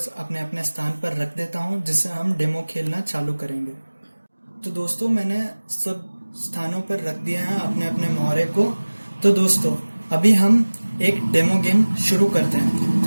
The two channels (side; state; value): both; inverted; correlation -1.00